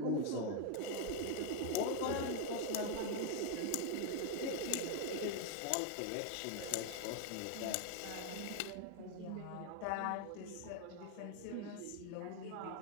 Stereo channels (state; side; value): different; both; correlation 0.01